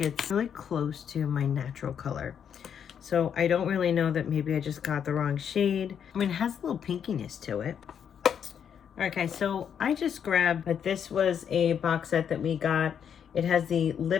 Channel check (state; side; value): quieter; right; 8.1 dB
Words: it's really close to my natural color. So I don't really know that maybe I just got the wrong shade. I mean, it has a little pinkiness to it. Okay, so I just grabbed, but this was a box set that we got. It has the